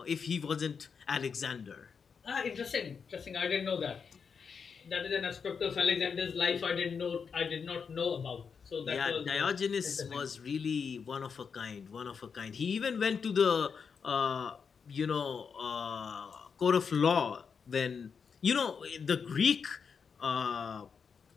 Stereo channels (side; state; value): right; quieter; 6.1 dB